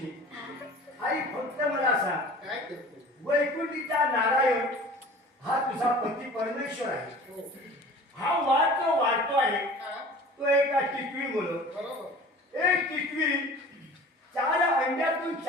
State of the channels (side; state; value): both; normal; correlation 0.42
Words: आई फक्त मला सांग वैकुंठीचा नारायण हा तुझा पती परमेश्वर आहे. हा वाद जो वाढतो आहे तो एका टिटवी मुलं एक टिटवी 4 अंड्यातून